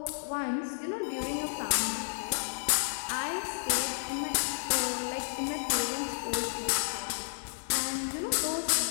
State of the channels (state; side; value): silent; right; digital silence